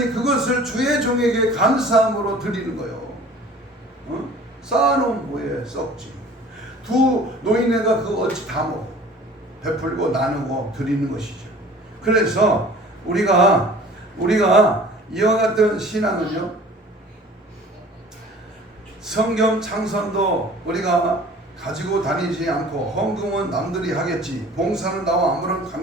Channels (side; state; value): both; normal; correlation 0.47